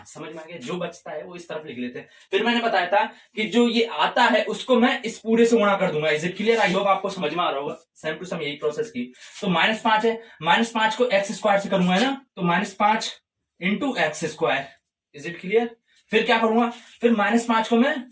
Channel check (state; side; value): identical; both; correlation 1.00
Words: समझ में आ गया, जो बचता है वो इस तरफ लिख लेते हैं। फिर मैंने बताया था कि जो ये आता है उसको मैं इस पूरे से गुणा कर दूंगा, is it clear. I hope आपको समझ में आ रहा होगा, सेम टू सेम यही प्रोसेस की। तो -5 है, -5 को x² से करूंगा है ना, तो -5 into x², is it clear. फिर क्या करूंगा, फिर -5 को मैं